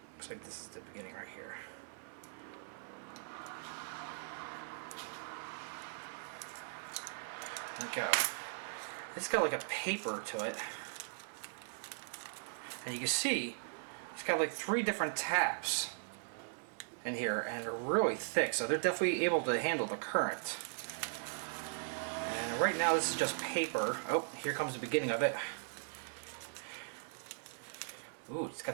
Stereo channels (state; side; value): silent; left; digital silence